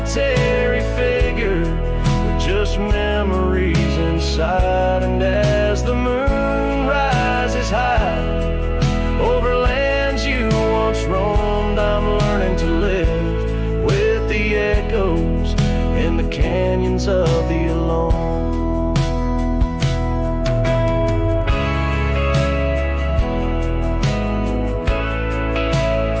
figure with just memories inside. And as the moon rises high over lands you once roamed, I'm learning to live with the echoes in the canyons of the alone.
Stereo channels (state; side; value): identical; both; correlation 1.00